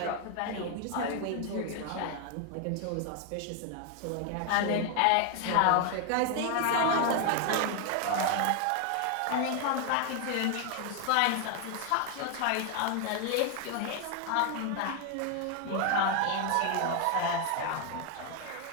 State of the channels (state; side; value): different; both; correlation 0.01